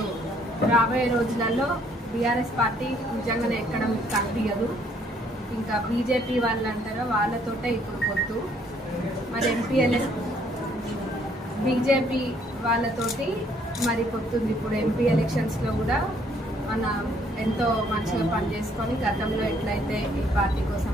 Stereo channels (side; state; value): both; normal; correlation 0.65